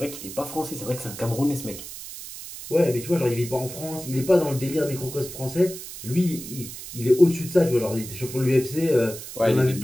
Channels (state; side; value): noise; right; hiss, 11 dB below the sound